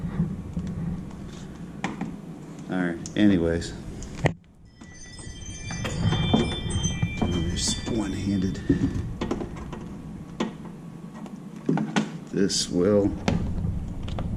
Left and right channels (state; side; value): identical; both; correlation 1.00